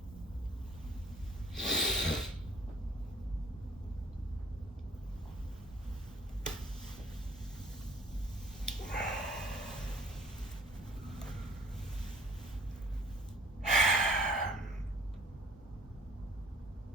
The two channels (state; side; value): normal; both; correlation 0.54